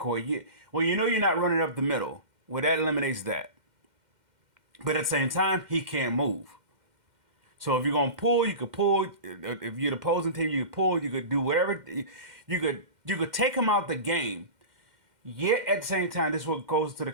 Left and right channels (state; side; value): late; left; 2.1 ms